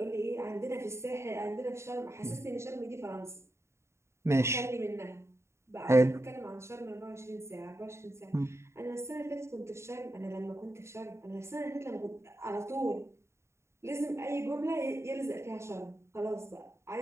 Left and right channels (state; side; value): late; left; 0.13 ms